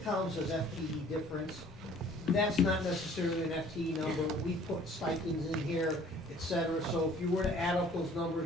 says FTE difference, that's not necessarily an FTE number. We put stipends in here, et cetera. So if you were to add up those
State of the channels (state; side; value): normal; both; correlation 0.54